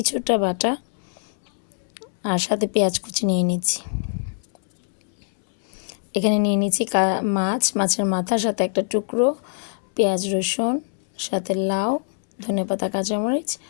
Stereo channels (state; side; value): silent; right; 63 dB below the other